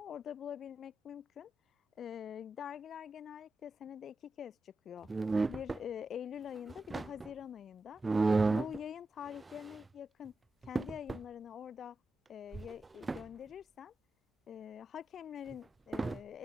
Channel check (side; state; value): both; normal; correlation 0.89